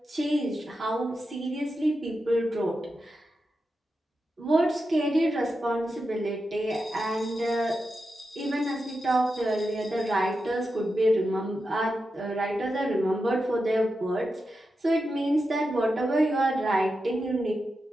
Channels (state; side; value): normal; both; correlation 0.89